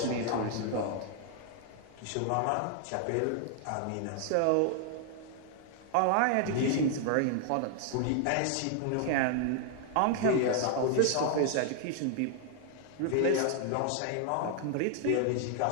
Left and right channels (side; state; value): both; different; correlation 0.00